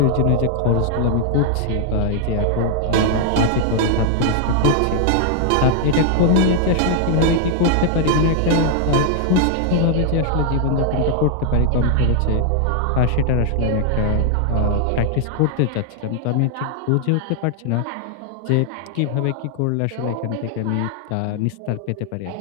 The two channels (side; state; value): both; different; correlation 0.00